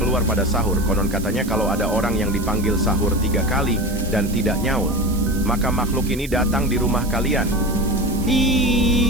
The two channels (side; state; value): right; noise; hiss, 15 dB below the sound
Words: pada sahur. Konon katanya kalau ada orang yang dipanggil sahur 3 kali dan tidak nyaut, maka makhluk ini datang di rumah kalian.